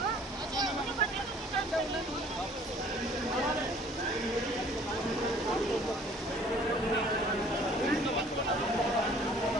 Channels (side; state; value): both; normal; correlation 0.54